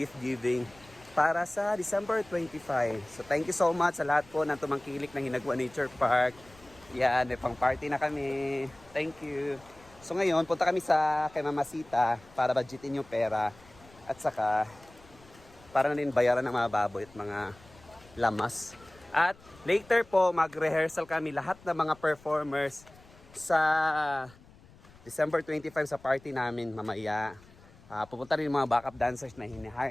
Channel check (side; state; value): left; noise; rumble, 25 dB below the sound